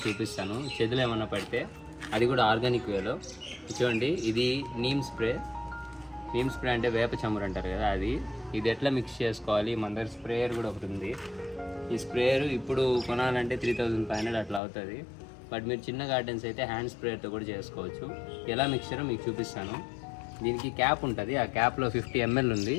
చూపిస్తాను. చేతులు ఏమన్నా పడితే అది కూడా ఆర్గానిక్ వేలో. చూడండి, ఇది నీమ్ స్ప్రే అంటే వేప చమురు అంటారు కదా, ఇది ఎట్లా మిక్స్ చేసుకోవాలి. మన దగ్గర స్ప్రేయర్ కూడా ఒకటి ఉంది. ఈ స్ప్రేయర్ ఇప్పుడు కొనాలంటే 3500 అట్లా అవుతుంది. బట్ మీరు చిన్న గార్డెన్స్ అయితే హ్యాండ్ స్ప్రేయర్తో కూడా చేసుకోవచ్చు. ఎలా మిక్చరో మీకు చూపిస్తాను. దీనికి క్యాప్ ఉంటుంది. ఆ క్యాప్లో 50 ml ఉంది.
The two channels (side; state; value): right; drops out; at 14.6 s